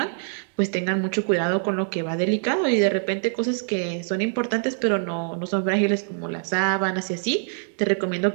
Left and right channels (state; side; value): silent; left; digital silence